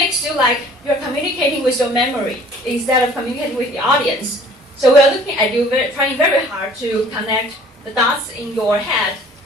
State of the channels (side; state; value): both; normal; correlation 0.52